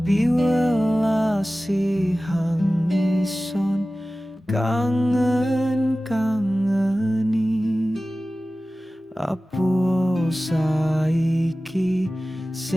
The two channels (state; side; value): normal; both; correlation 0.96